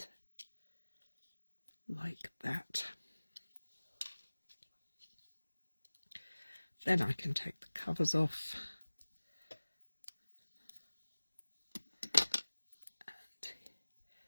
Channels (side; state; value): both; inverted; correlation -1.00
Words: like that. Then I can take the covers off and